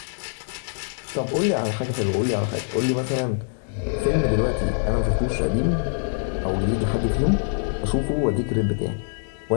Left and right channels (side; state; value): right; silent; digital silence